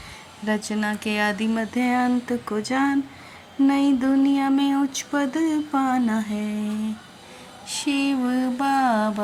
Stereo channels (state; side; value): identical; both; correlation 1.00